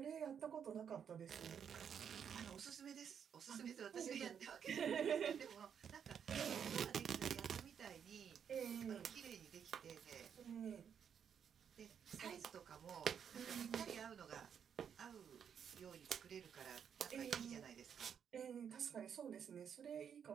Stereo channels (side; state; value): left; quieter; 7.8 dB